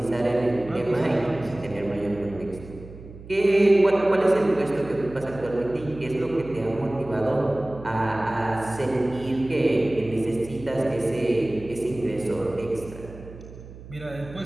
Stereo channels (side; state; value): right; noise; hum, 16 dB below the sound